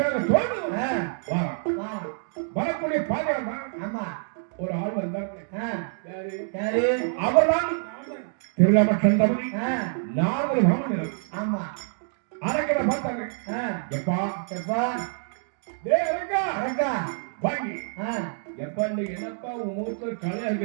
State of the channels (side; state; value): left; silent; digital silence